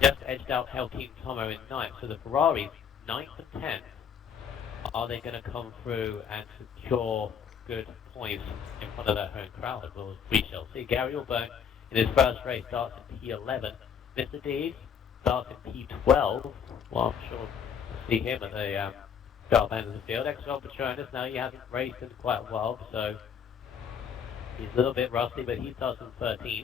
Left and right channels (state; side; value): quieter; right; 7.6 dB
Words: Just edged out Helkeem Tomo in 9th. So the Ferraris, 9th and 10th. Are they going to come through and secure good points in front of their home crowd? Well, we shall see. Gary Allbone in his first race starts in P11. Mr. D starts in P12. Well, I'm sure we'll see him at the sharp end of the field. XRL Patronus, now he hasn't raced in quite a while, so he's a little bit rusty, but he starts in